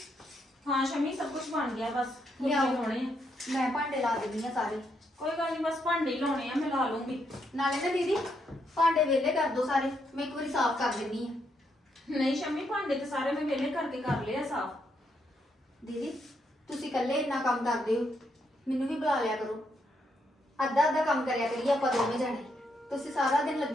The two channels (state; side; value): normal; both; correlation 0.77